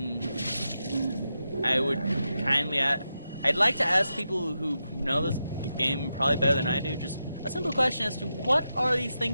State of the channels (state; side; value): inverted; both; correlation -0.88